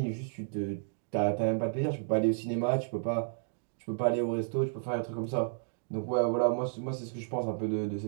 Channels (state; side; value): silent; left; digital silence